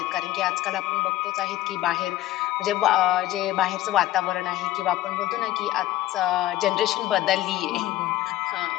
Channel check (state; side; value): quieter; right; 15.1 dB